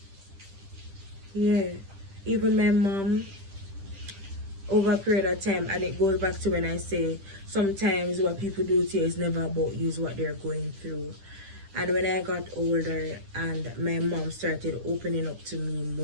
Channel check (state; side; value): late; left; 10 ms